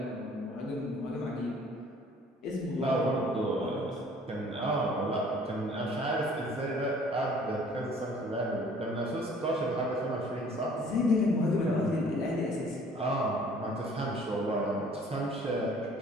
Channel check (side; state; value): both; normal; correlation 0.54